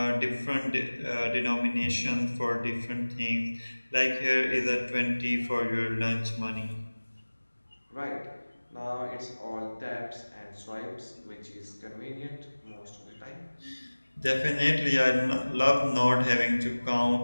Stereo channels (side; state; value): both; inverted; correlation -1.00